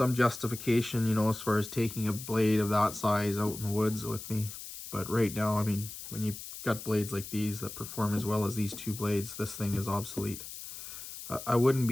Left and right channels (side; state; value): left; noise; hiss, 11 dB below the sound